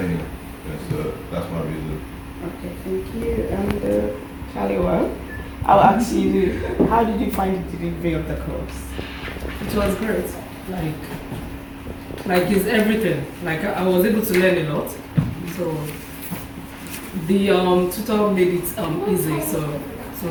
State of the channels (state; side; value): identical; both; correlation 1.00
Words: Yeah, so that's my reason. Okay, thank you. And Kaliwa, I'll ask you, how did you find the delivery of the course? It was great. Like it's everything. Like I was able to learn a lot. So the tutor made it easy. So it